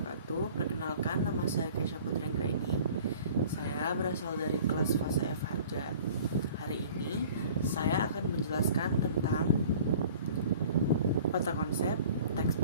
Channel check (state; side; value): inverted; both; correlation -0.47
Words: Perkenalkan, nama saya Kesha Putri Anggraini. Saya berasal dari kelas fase F Harja. Hari ini saya akan menjelaskan tentang peta konsep teks